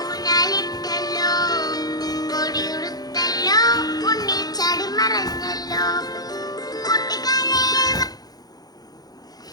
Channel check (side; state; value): right; late; 0.19 ms